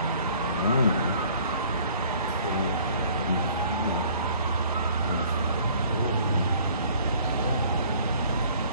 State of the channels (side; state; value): both; inverted; correlation -0.55